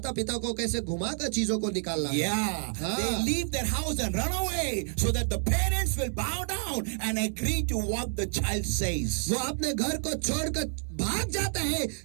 पिता को कैसे घुमाकर चीजों को निकालना है। Yeah, they leave their house and run away so that the parents will bow down and agree to what the child says. वो अपने घर को छोड़कर भाग जाता है।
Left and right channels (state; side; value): silent; left; 59 dB below the other